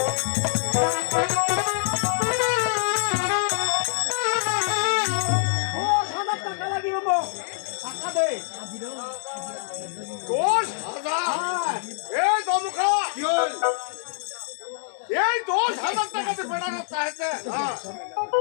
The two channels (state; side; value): silent; right; 62 dB below the other